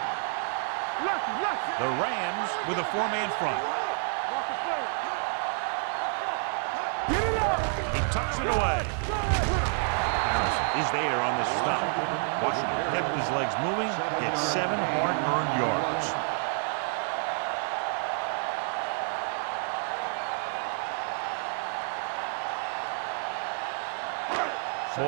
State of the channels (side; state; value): left; silent; 56 dB below the other